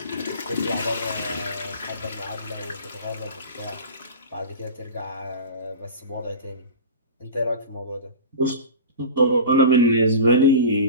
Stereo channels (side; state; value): both; inverted; correlation -0.32